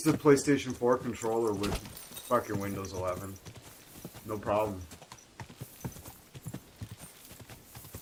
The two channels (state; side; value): identical; both; correlation 1.00